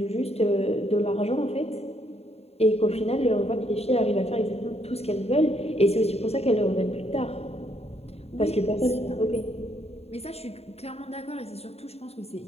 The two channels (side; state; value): right; late; 0.30 ms